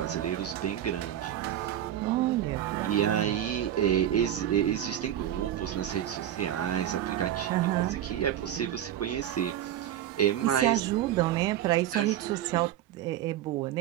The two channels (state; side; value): quieter; left; 11.3 dB